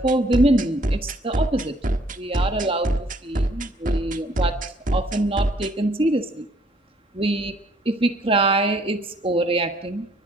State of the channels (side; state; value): both; normal; correlation 0.63